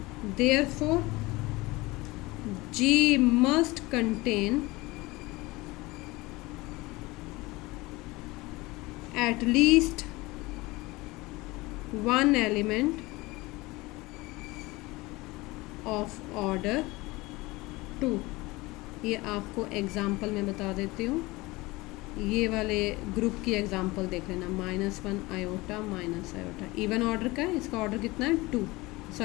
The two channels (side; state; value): right; quieter; 21.8 dB